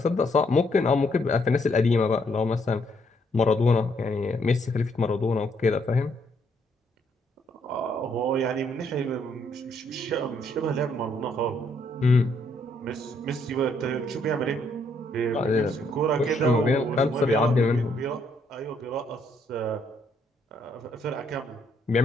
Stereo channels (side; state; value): both; normal; correlation 0.71